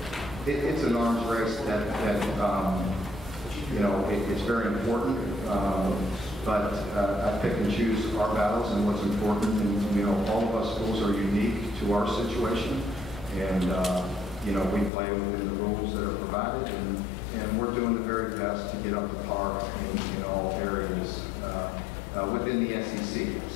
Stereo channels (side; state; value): right; drops out; at 14.9 s